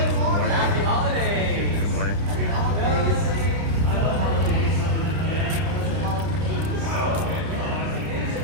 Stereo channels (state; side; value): late; left; 30 ms